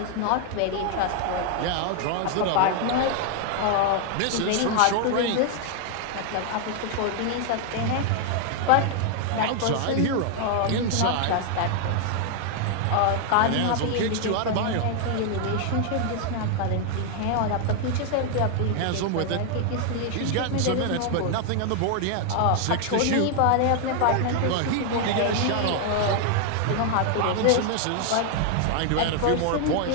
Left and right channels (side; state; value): both; different; correlation 0.00